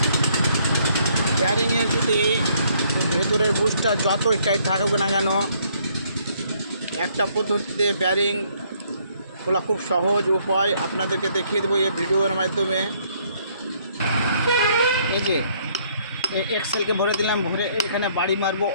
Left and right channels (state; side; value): inverted; both; correlation -0.67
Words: বেয়ারিংয়ের যদি ভেতরের বুশটা যতই টাইট থাকুক না কেন, একটা পদ্ধতিতে বেয়ারিং খোলা খুব সহজ উপায় আপনাদেরকে দেখিয়ে দেবো এই ভিডিওর মাধ্যমে। এই যে এক্সেলকে ভরে দিলাম, ভরে এখানে বাড়ি মারবো,